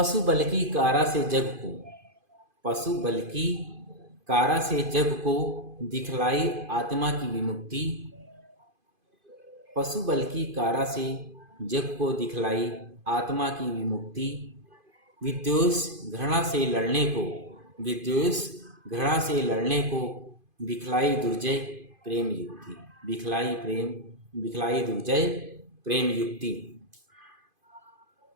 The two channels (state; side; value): late; left; 2.5 ms